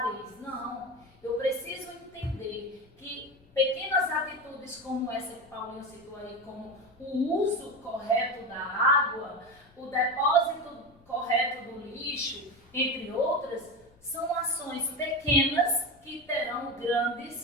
Não. Eu preciso entender que pequenas atitudes como essa que Paulinho citou aí, como o uso correto da água, o depósito correto do lixo, entre outras, são ações pequenas que terão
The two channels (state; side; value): noise; left; rumble, 28 dB below the sound